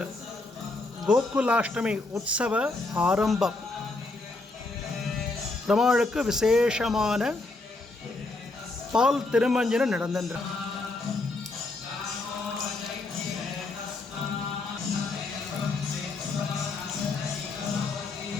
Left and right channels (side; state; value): right; quieter; 3.2 dB